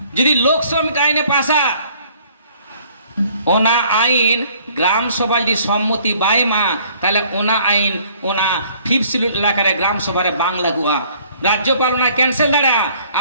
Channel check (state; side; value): inverted; both; correlation -0.58